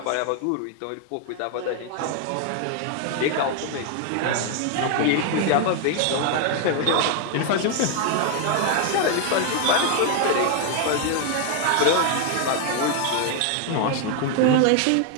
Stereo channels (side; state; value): both; different; correlation 0.01